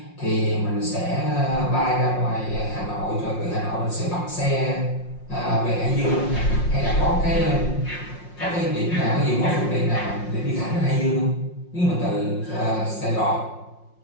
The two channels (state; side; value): late; right; 5.6 ms